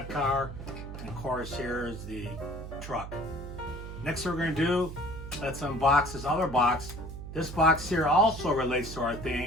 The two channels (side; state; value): right; noise; hum, 10 dB below the sound